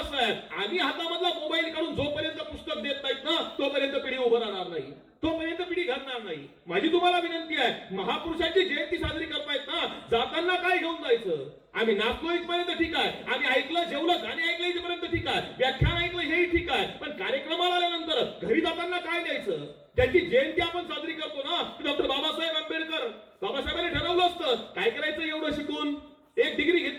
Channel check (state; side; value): identical; both; correlation 1.00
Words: आहे, आम्ही हातामधला मोबाईल काढून जोपर्यंत पुस्तक देत नाहीत ना तोपर्यंत पिढी उभं राहणार नाही, तोपर्यंत पिढी घडणार नाही. माझी तुम्हाला विनंती आहे, महापुरुषांची जयंती साजरी करतायत ना, जाताना काय घेऊन जायचं? आम्ही नाचलो इथपर्यंत ठीक आहे, आम्ही ऐकलं, जेवलं, गाणी ऐकलं इथपर्यंत ठीक आहे, व्याख्यान ऐकलं हेही ठीक आहे, पण कार्यक्रमाला आल्यानंतर घरी जाताना काय द्यायचं? त्यांची जयंती आपण साजरी करतो ना, डॉक्टर बाबासाहेब आंबेडकर, बाबासाहेबांनी ठरवलं असतं काय करायचं एवढं शिकून, 1 डिग्री